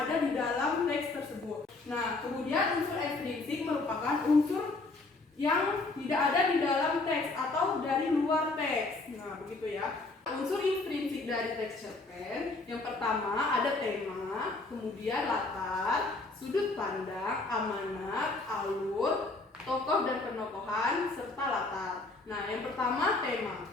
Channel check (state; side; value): quieter; right; 3.3 dB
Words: di dalam teks tersebut. Nah, kemudian unsur ekstrinsik merupakan unsur yang tidak ada di dalam teks atau dari luar teks. Nah, begitu ya. Unsur intrinsik dari texture pen yang pertama ada tema, kemudian latar, sudut pandang, amanat, alur, tokoh dan penokohan, serta latar. Nah, yang pertama tema.